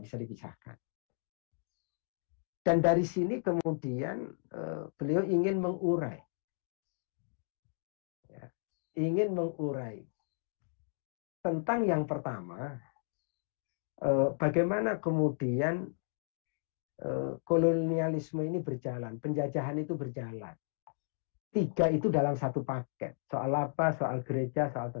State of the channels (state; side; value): silent; right; digital silence